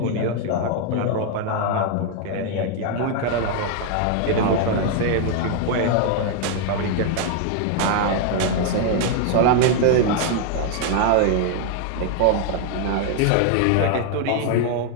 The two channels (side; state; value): both; different; correlation 0.00